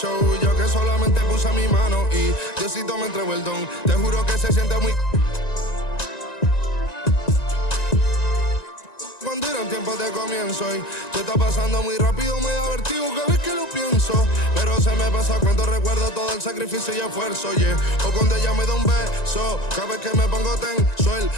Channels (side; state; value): right; late; 1.9 ms